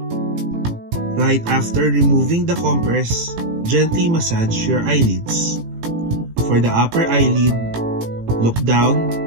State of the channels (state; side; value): late; left; 18 ms